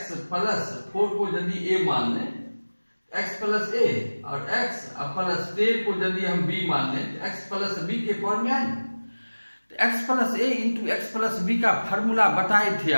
प्लस 4 को यदि a मान लें, x प्लस ए, और x प्लस 10 को यदि हम b मान लें तो x प्लस बी के फॉर्म में आए। तो x plus a into x plus B का फॉर्मूला बताए थे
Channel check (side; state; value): both; inverted; correlation -1.00